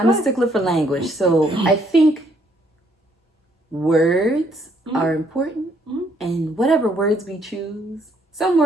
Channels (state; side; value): normal; both; correlation 0.69